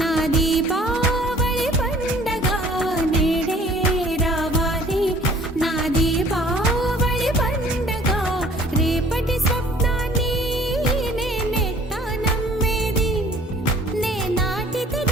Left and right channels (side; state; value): both; normal; correlation 0.52